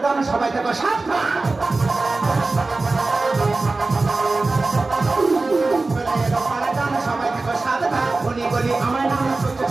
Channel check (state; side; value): quieter; left; 3.4 dB